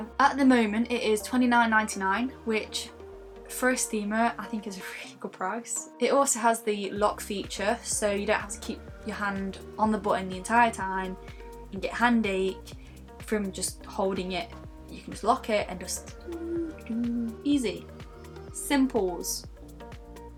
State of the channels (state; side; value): identical; both; correlation 1.00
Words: At the moment it is $29.99, which for a steamer I think is a really good price. It also has the lock feature, so you don't have to keep your hand on the button the entire time and get hand ache from just holding it. You can just lock it and just easy. Simples.